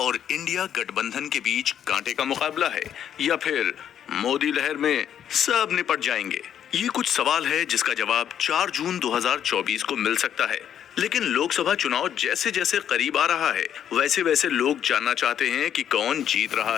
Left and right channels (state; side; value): quieter; right; 9.5 dB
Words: इंडिया गठबंधन के बीच कांटे का मुकाबला है या फिर मोदी लहर में सब निपट जाएंगे? ये कुछ सवाल है जिसका जवाब 4 जून 2024 को मिल सकता है। लेकिन लोकसभा चुनाव जैसे जैसे करीब आ रहा है, वैसे वैसे लोग जानना चाहते हैं कि कौन जीत रहा